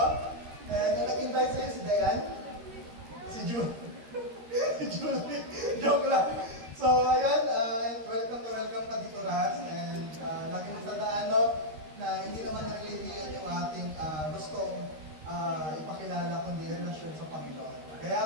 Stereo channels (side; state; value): left; late; 13 ms